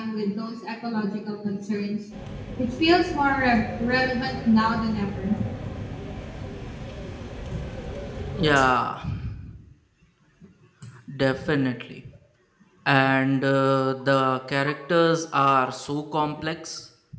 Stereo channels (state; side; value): identical; both; correlation 1.00